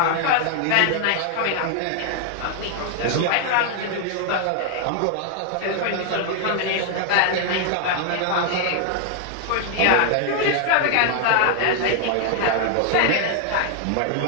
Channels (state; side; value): different; both; correlation 0.00